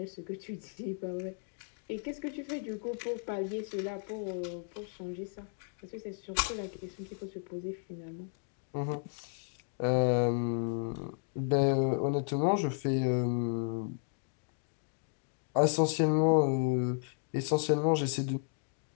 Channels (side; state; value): right; silent; 55 dB below the other